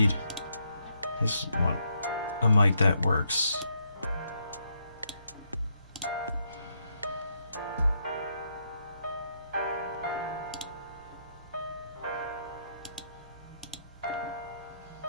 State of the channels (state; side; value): inverted; both; correlation -0.76